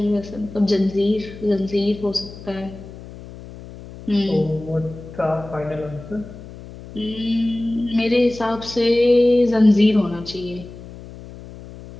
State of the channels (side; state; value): left; noise; hum, 16 dB below the sound